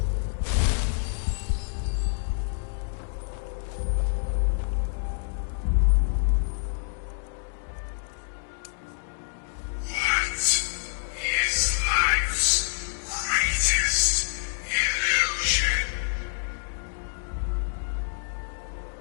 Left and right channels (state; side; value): silent; right; digital silence